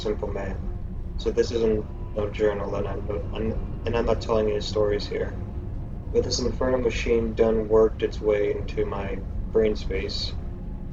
man. So this isn't no journal, and I'm not telling any stories here. But this infernal machine done worked its way into my brain space,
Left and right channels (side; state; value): both; identical; correlation 1.00